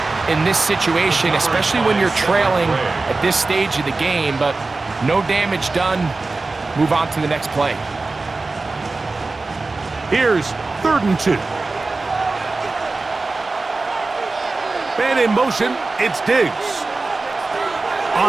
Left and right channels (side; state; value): left; quieter; 3.5 dB